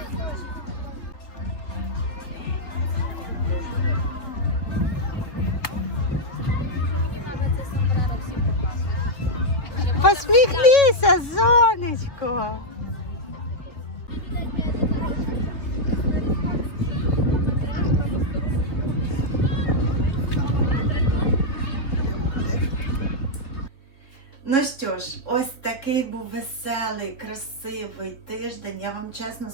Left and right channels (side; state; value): right; late; 3.6 ms